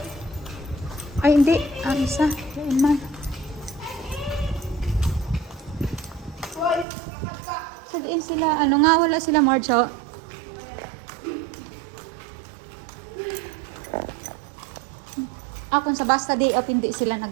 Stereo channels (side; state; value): left; drops out; at 6.9 s